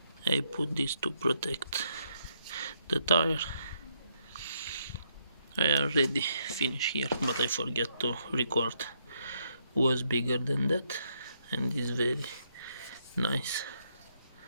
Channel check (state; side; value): inverted; both; correlation -0.75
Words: I put this to protect the tire. I already finished here, but I forget to record. Was bigger than that, and is very nice.